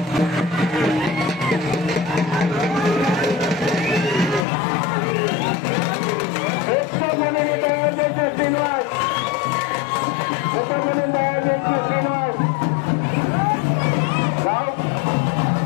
ఎక్కువ మందిని తయారు చేసే శ్రీనివాస్, ఎక్కువ మందిని తయారు చేసే శ్రీనివాస్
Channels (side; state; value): right; drops out; at 4.5 s